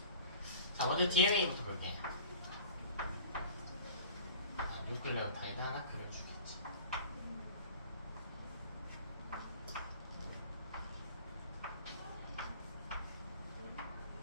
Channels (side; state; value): both; inverted; correlation -0.43